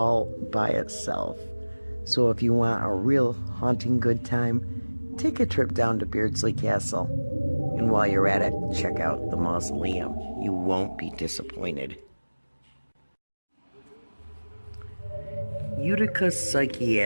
by itself. So if you want a real haunting good time, take a trip down to Beardsley Castle. And while you're at it, check out the mausoleum. You won't be disappointed. Utica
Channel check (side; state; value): both; inverted; correlation -1.00